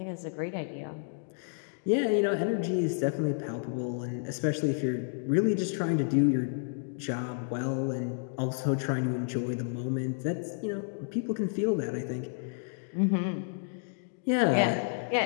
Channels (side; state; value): right; silent; digital silence